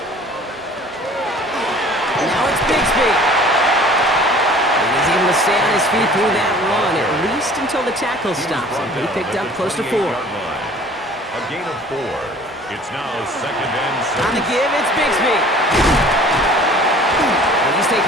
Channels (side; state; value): both; normal; correlation 0.49